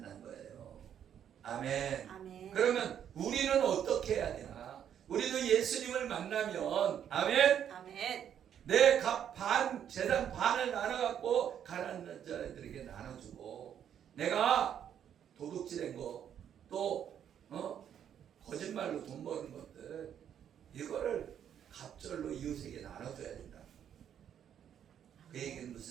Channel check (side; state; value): left; quieter; 9.3 dB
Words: 거예요. 아멘. 아멘. 그러면 우리는 어떻게 해야 되나? 우리도 예수님을 만나면 아멘. 아멘. 내 재산 반을 나눠갖고 가난한 자들에게 나눠주고 내가 도둑질한 거 또 거짓말로 돈 버는 것들 이거를 갑절로 이웃에게 나눠줘야 된다. 그 얘기는